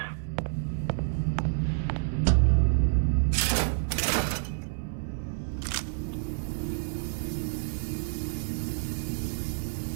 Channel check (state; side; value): silent; left; 59 dB below the other